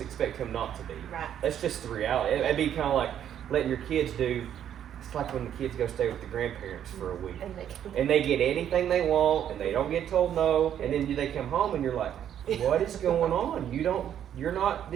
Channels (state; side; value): quieter; left; 9.9 dB